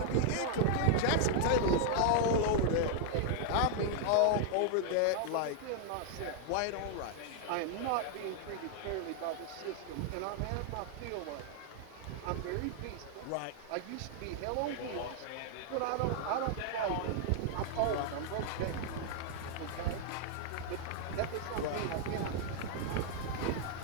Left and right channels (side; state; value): both; different; correlation 0.00